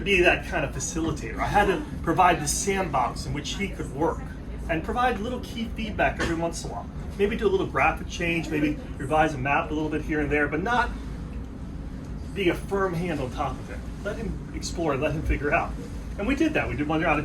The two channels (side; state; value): both; identical; correlation 1.00